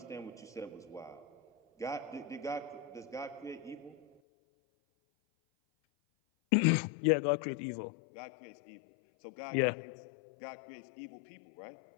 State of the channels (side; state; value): right; drops out; at 4.1 s